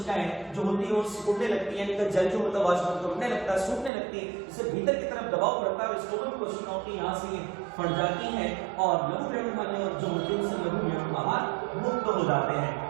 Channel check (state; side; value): drops out; left; at 3.9 s